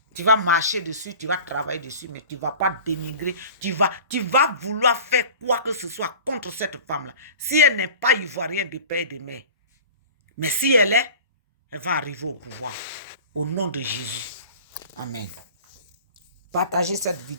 tu vas marcher dessus, tu vas travailler dessus, mais tu ne vas pas dénigrer. Tu vas vouloir faire quoi que ce soit contre cette femme-là. Si elle n'est pas ivoirienne de père et de mère. Mais si elle est, elle va arriver au pouvoir. Au nom de Jésus. Amen. Partagez cette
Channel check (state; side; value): inverted; both; correlation -0.40